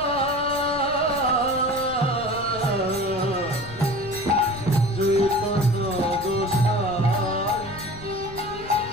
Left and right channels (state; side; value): noise; left; rumble, 15 dB below the sound